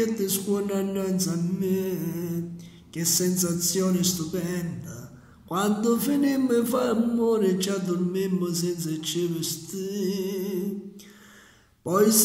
scuola innanzi a me. Che sensazione stupenda! Quando finimmo di fare amore ci addormimmo senza ci vestire. Poi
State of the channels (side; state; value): both; identical; correlation 1.00